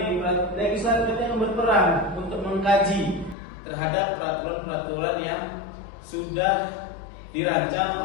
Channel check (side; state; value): right; drops out; at 3.4 s